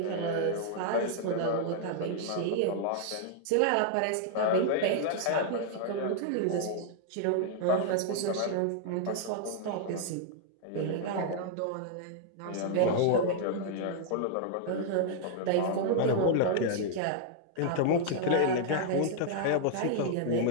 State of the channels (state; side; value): different; both; correlation -0.01